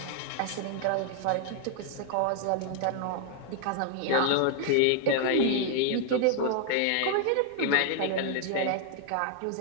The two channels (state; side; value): different; both; correlation 0.00